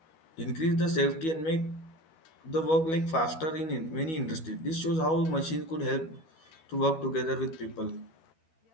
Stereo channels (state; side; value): late; right; 12 ms